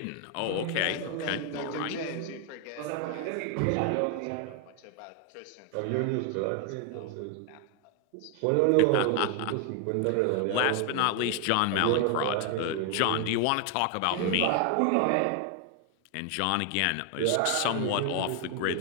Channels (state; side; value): different; both; correlation 0.00